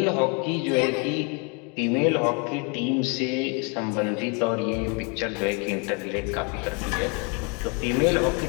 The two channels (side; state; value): right; quieter; 31.8 dB